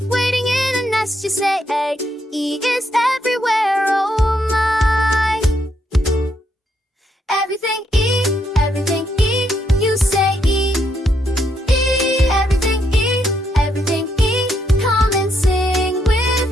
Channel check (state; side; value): normal; both; correlation 0.76